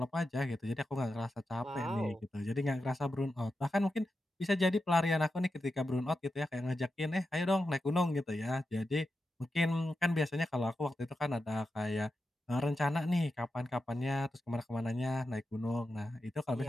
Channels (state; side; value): normal; both; correlation 0.89